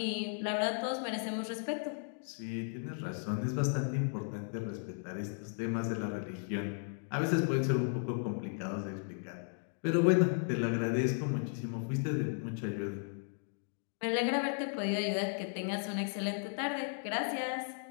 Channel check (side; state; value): right; silent; 54 dB below the other